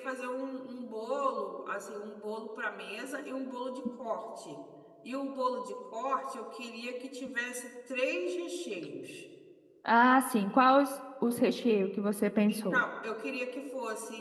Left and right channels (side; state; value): both; identical; correlation 1.00